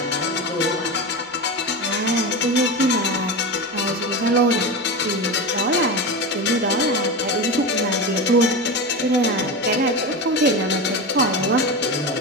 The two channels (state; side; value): normal; both; correlation 0.22